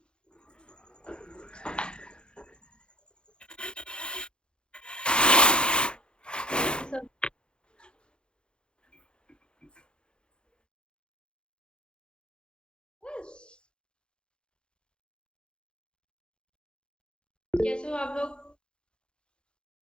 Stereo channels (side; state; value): right; late; 0.052 ms